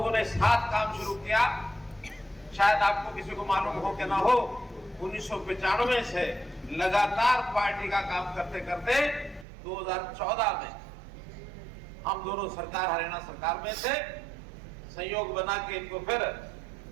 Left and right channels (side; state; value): left; drops out; at 9.5 s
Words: ने साथ काम शुरू किया। शायद आपको किसी को मालूम हो कि ना हो, 1995 से लगातार पार्टी का काम करते करते 2014 में हम दोनों सरकार, हरियाणा सरकार में से संयोग बना के इनको फिर